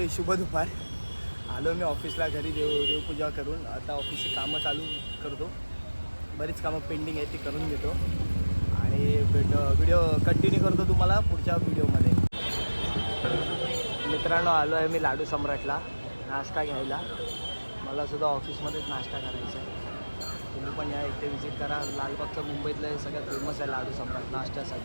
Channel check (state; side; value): inverted; both; correlation -1.00